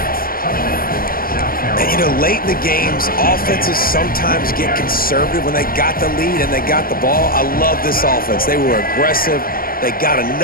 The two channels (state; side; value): late; right; 0.42 ms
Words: And, you know, late in the games, offenses sometimes get conservative when they got the lead and they got the ball. I love this offense. They were aggressive. They got